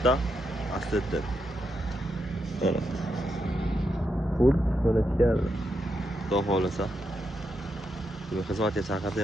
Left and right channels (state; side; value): normal; both; correlation 0.83